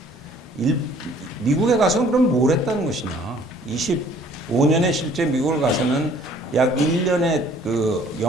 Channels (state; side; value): normal; both; correlation 0.56